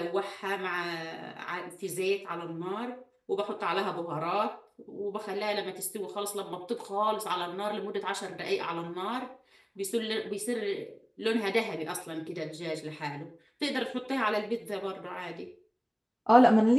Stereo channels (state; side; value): identical; both; correlation 1.00